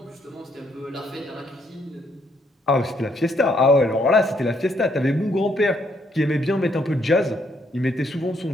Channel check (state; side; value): normal; both; correlation 0.72